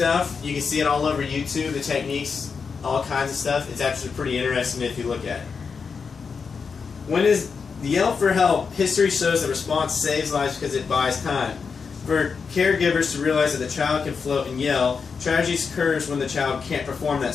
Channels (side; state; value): right; quieter; 5.5 dB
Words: You can see it all over YouTube, the techniques, all kinds of stuff. It's actually pretty interesting if you look at it. When is the yell for help? History shows that response saves lives because it buys time. For caregivers to realize that the child can float and yell, tragedy occurs when the child can't perform